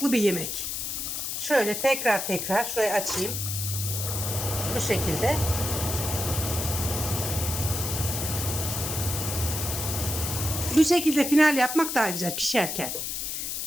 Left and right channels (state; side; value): noise; left; hiss, 3 dB below the sound